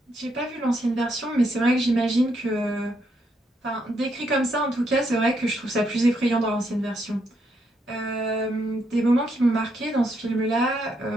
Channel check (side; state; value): both; normal; correlation 0.77